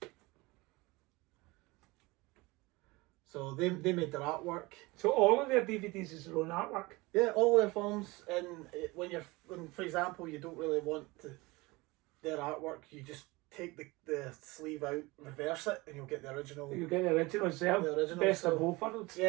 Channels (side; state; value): left; quieter; 22.9 dB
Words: So they made their artwork. So all of their DVDs is their own artwork. Yeah, all their films. And when for example, you don't really want their artwork, you just take the sleeve out, reverse it, and you'll get the original. You get the original as well. The original. Best of both worlds.